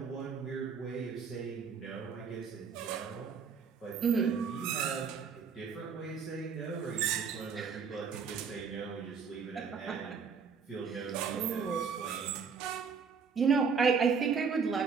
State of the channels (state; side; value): quieter; left; 5.9 dB